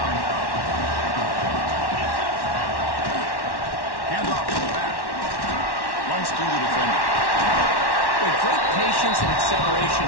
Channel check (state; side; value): late; right; 1.1 ms